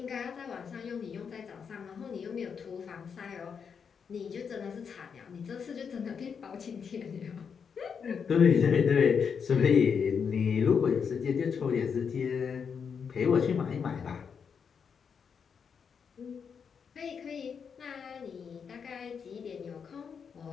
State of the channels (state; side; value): quieter; right; 6.5 dB